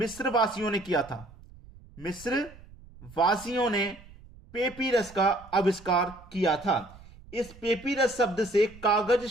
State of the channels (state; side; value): noise; right; rumble, 21 dB below the sound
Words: वासियों ने किया था। मिस्र वासियों ने पेपिरस का आविष्कार किया था। इस पेपिरस शब्द से कागज